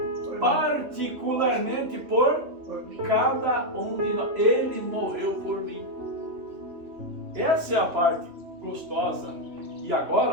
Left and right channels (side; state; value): left; late; 3.1 ms